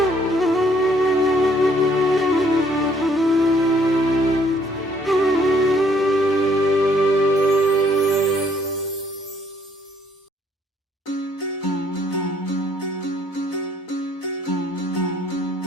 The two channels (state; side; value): normal; both; correlation 0.65